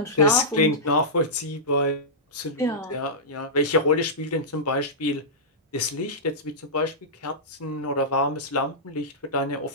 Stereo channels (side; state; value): both; normal; correlation -0.13